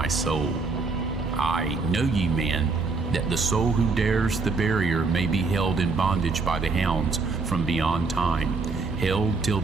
soul. I, know ye, man, that the soul who dares the barrier may be held in bondage by the hounds from beyond time, held till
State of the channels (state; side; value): quieter; left; 4.1 dB